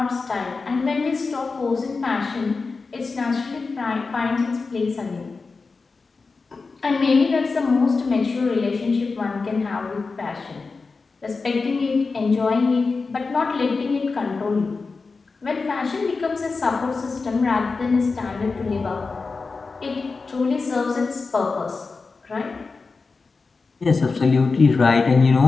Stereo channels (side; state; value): right; quieter; 4.3 dB